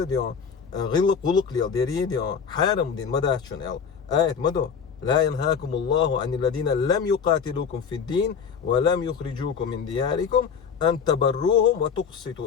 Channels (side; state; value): right; quieter; 6.5 dB